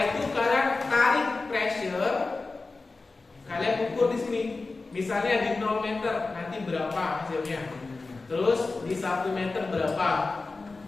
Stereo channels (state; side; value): quieter; right; 3.7 dB